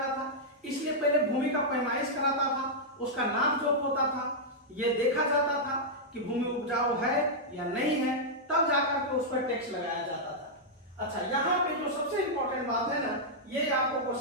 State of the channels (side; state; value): both; normal; correlation -0.07